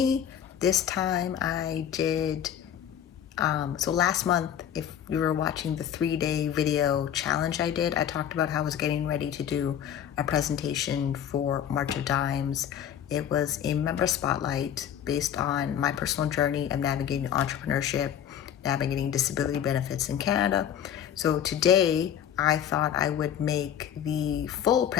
This time I did, so last month, if you were watching the 3-day video challenge I did, I talked about how I was getting ready to do a presentation for March of Dimes. It was a member spotlight based on my personal journey of navigating entrepreneurship, navigating disability benefits in Canada. So today I thought I would make the full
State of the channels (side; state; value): right; quieter; 9.7 dB